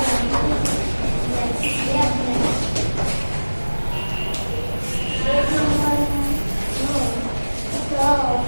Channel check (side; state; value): both; inverted; correlation -1.00